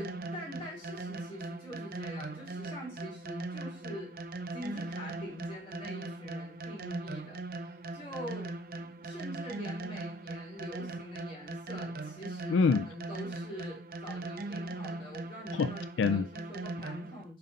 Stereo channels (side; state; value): both; normal; correlation 0.55